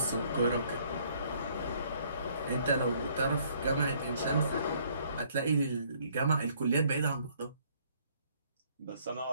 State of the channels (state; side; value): inverted; both; correlation -0.63